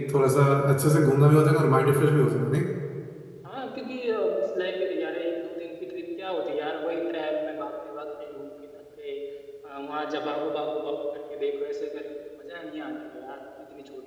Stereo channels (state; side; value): identical; both; correlation 1.00